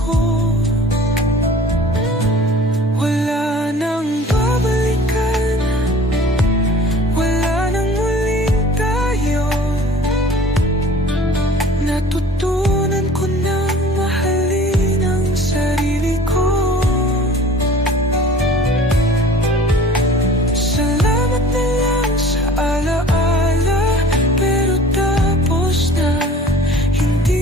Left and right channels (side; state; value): both; normal; correlation 0.46